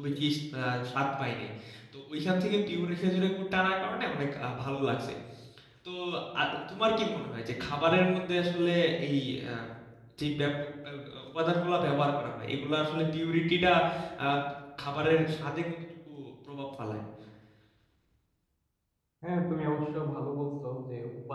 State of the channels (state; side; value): identical; both; correlation 1.00